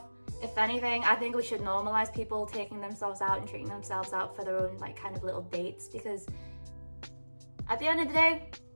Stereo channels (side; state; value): both; inverted; correlation -1.00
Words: If anything, I think we should normalize people taking themselves out and treating themselves out for their own like kind of little dates, because at the end of the day,